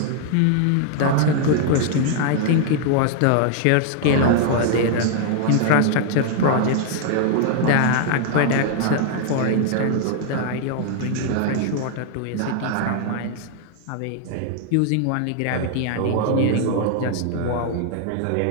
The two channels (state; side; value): different; both; correlation 0.00